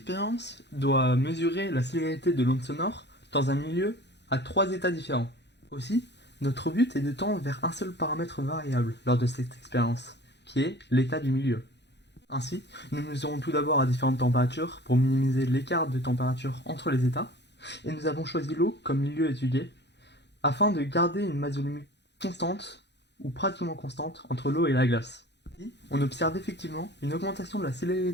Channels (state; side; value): late; right; 0.50 ms